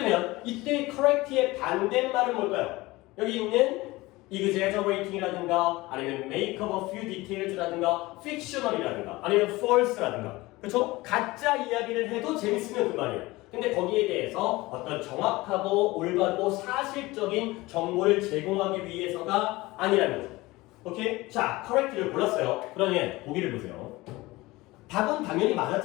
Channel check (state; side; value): quieter; right; 20.5 dB